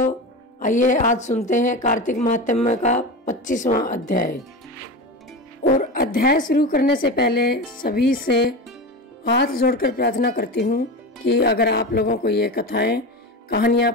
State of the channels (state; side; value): normal; both; correlation 0.24